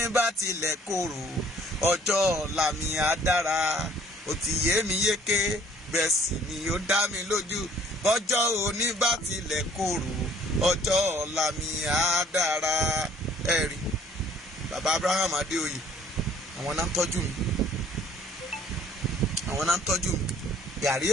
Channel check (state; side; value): normal; both; correlation 0.57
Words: bá tilẹ̀ korò, ọjọ́ ọ̀la mi á dára. Ó ti yé mi yéké, bẹ́ẹ̀ sì ni ó dá mi lójú. Ọjọ́ òní bá tilẹ̀ korò, ọjọ́ ọ̀la mi á dára. Ẹ rí, bàbá Abraham Adéoyè, àwọn náà ń tọ́jú mi. Àwọn náà ń tọ́jú mi. Gàrí